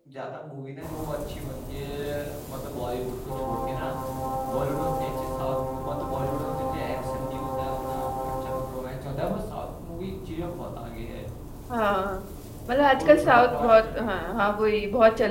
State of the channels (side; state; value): both; identical; correlation 1.00